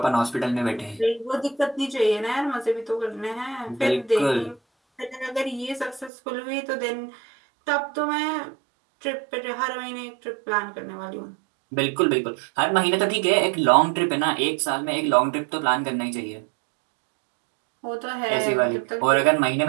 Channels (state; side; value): drops out; left; at 6.1 s